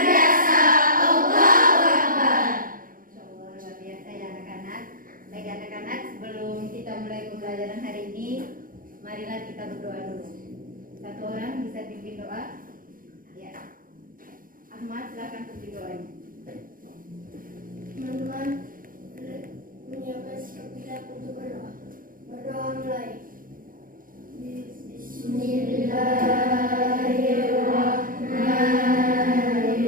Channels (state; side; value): late; left; 0.40 ms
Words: Allahu Akbar. Insyaallah luar biasa ya anak-anak. Baik anak-anak, sebelum kita mulai pembelajaran hari ini, marilah kita berdoa dulu. Satu orang bisa pimpin doa? Ya. Ahmad, silakan pimpin doanya. Teman-teman, menyiapkan sikap kita untuk berdoa. Berdoa mulai.